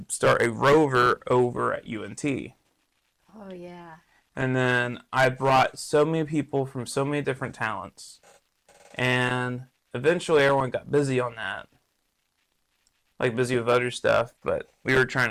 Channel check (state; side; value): identical; both; correlation 1.00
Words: start a Rover over at UNT. Oh, yeah. And then I brought so many people from so many different talents. And eventually everyone got busy on that. Like busy with other stuff, but we were trying